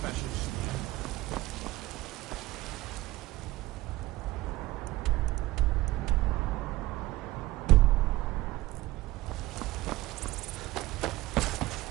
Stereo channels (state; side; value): quieter; left; 18.2 dB